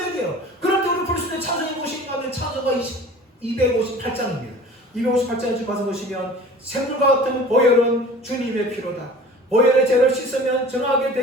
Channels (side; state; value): both; normal; correlation 0.43